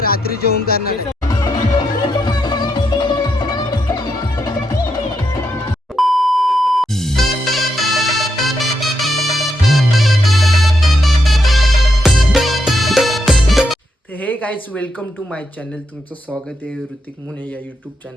रात्री जेवण करणार आहे. तर hey guys, welcome to my channel. तुमचं स्वागत आहे ऋतिक मुने या यूट्यूब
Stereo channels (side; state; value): both; normal; correlation 0.81